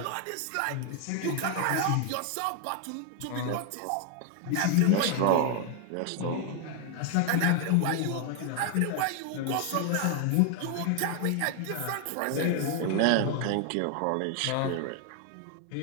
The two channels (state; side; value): different; both; correlation 0.00